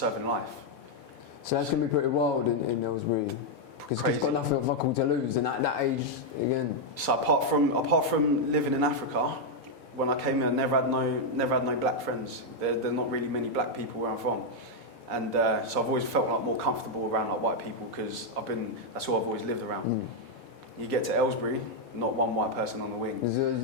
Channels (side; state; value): both; normal; correlation -0.01